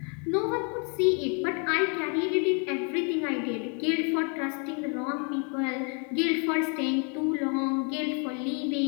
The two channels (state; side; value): quieter; right; 37.4 dB